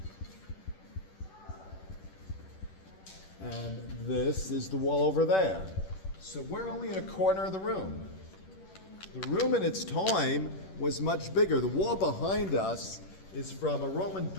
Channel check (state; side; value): late; right; 10 ms